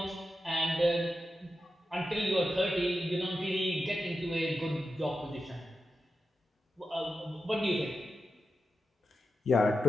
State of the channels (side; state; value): both; normal; correlation 0.89